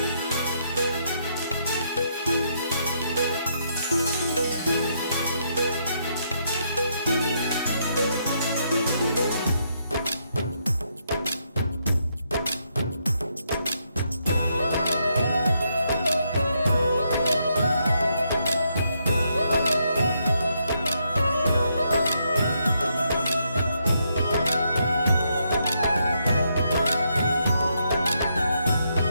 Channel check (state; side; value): inverted; both; correlation -0.77